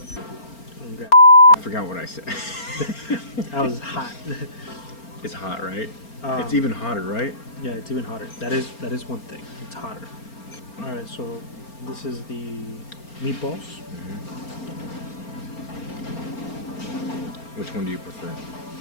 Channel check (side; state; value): right; late; 4.4 ms